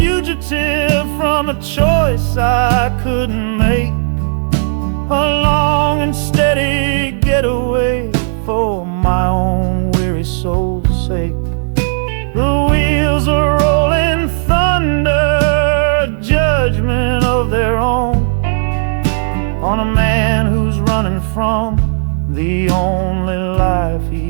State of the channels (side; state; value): left; silent; digital silence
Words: from a choice I couldn't make, a long and steady getaway for my own weary soul's sake. The wheels are rolling thunder, a judgment of their own, on a man who's running from the only life